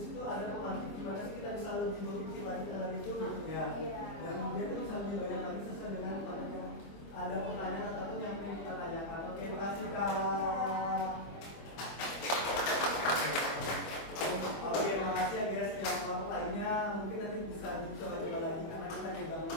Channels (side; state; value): right; late; 25 ms